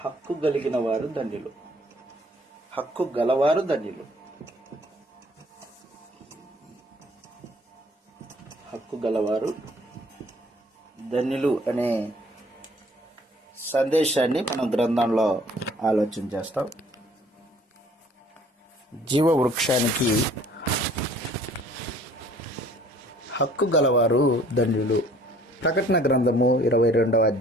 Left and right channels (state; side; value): normal; both; correlation 0.56